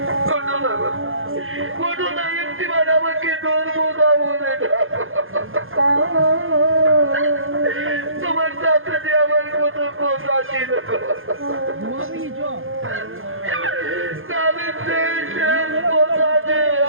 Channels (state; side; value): late; left; 0.60 ms